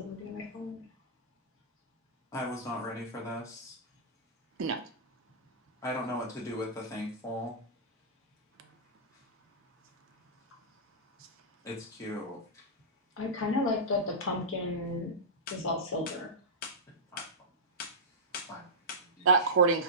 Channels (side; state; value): both; normal; correlation -0.14